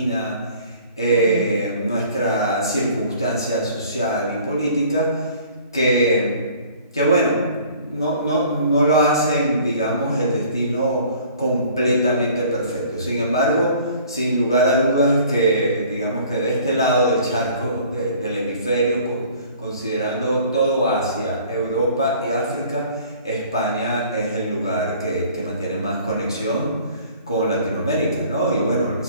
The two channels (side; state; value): both; inverted; correlation -0.52